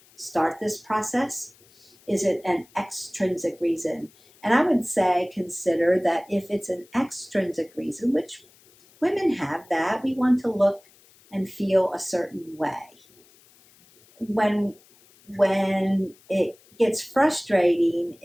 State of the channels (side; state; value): left; noise; hiss, 29 dB below the sound